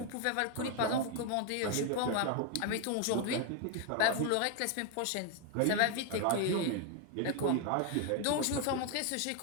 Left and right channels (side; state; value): both; different; correlation 0.01